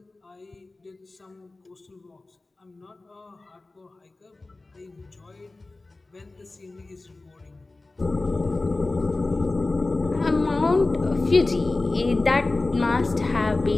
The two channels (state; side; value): quieter; right; 3.2 dB